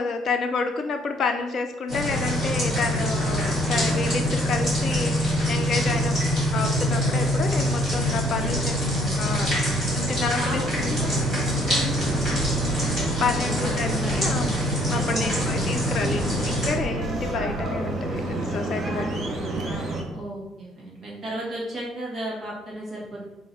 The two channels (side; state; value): both; normal; correlation 0.63